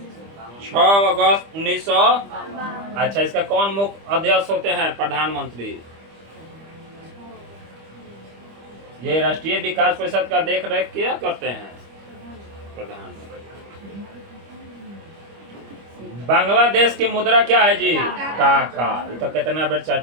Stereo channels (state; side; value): late; left; 25 ms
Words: 6 अगस्त 1900। अच्छा, इसका कौन मुख्य अध्यक्ष होते हैं? प्रधानमंत्री। ये राष्ट्रीय विकास परिषद का देख रेख क्या करते हैं? प्रधानमंत्री। बांग्लादेश की मुद्रा क्या है जी? टाका। ये तो कितना बार